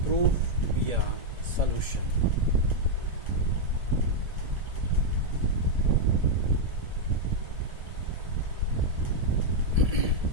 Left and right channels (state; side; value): late; left; 1.7 ms